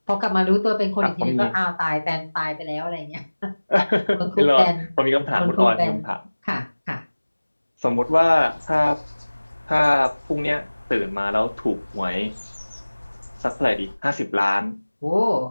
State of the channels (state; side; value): inverted; both; correlation -1.00